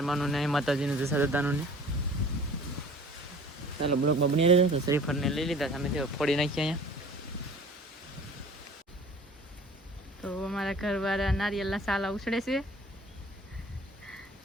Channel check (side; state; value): both; normal; correlation 0.47